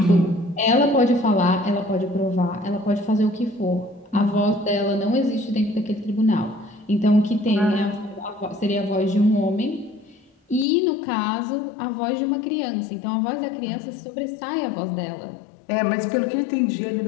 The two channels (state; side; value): drops out; right; at 10.7 s